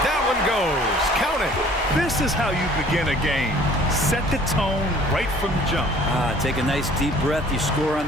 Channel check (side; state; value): both; normal; correlation 0.53